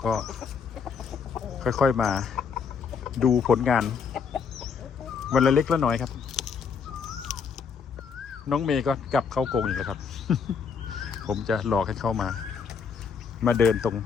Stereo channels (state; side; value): quieter; right; 6.1 dB